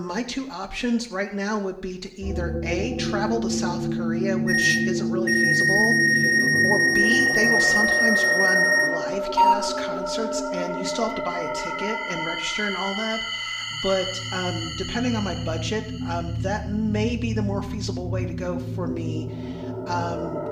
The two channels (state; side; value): identical; both; correlation 1.00